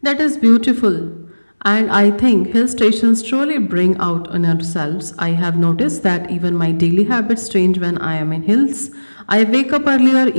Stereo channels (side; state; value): both; inverted; correlation -1.00